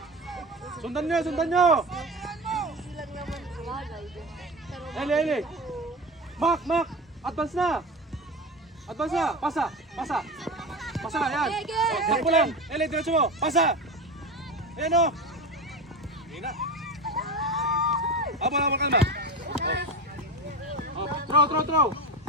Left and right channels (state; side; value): normal; both; correlation 0.25